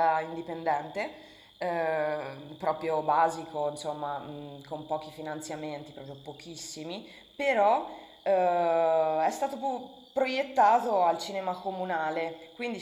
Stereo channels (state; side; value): identical; both; correlation 1.00